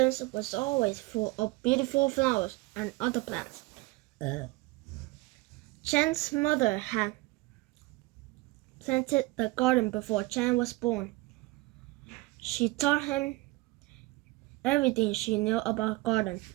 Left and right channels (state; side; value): quieter; left; 21.7 dB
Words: was always full of beautiful flowers and other plants. Chen's mother had planted the garden before Chen was born. She taught him everything she knew about gardening.